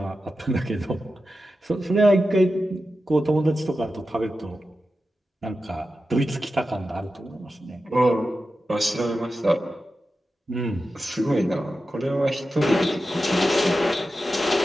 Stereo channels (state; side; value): normal; both; correlation 0.92